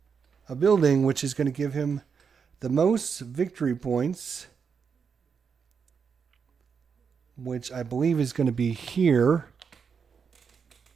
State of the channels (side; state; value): left; quieter; 6.2 dB